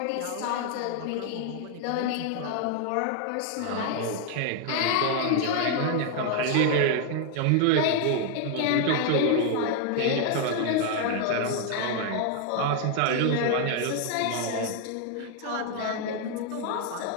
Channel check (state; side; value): different; both; correlation 0.00